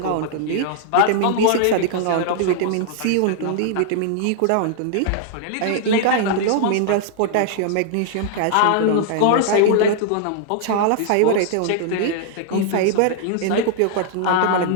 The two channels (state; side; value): different; both; correlation -0.01